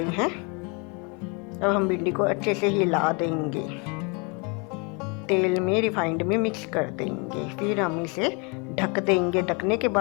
हैं। अब हम भिंडी को अच्छे से हिला देंगे, तेल में रिफाइंड में मिक्स कर देंगे। फिर हम इसे ढक देंगे। ढकने के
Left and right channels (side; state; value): right; quieter; 32.4 dB